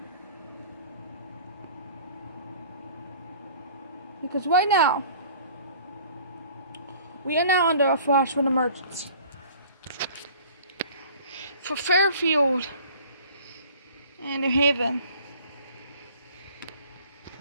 Because right now, we are now under a flash flood emergency. For Fairfield and New Haven.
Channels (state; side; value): inverted; both; correlation -0.49